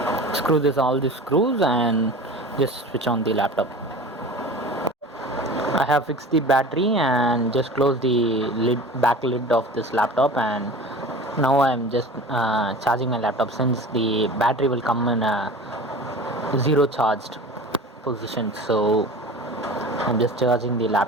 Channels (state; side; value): normal; both; correlation 0.37